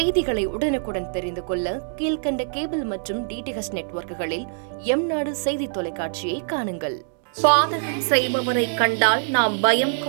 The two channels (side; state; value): left; silent; digital silence